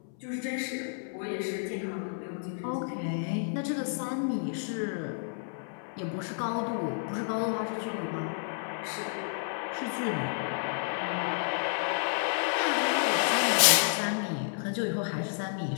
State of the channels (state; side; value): silent; right; 57 dB below the other